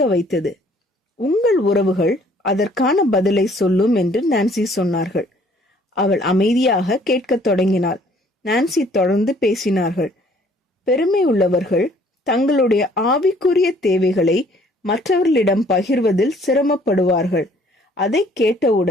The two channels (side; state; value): both; normal; correlation 0.59